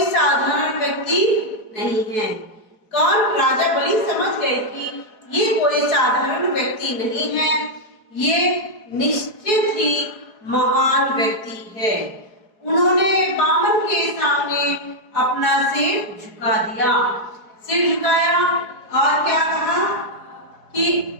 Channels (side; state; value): right; late; 4.6 ms